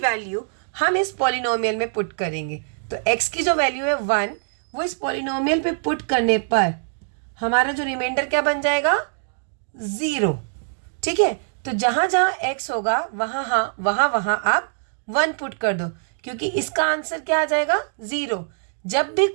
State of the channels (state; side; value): silent; left; digital silence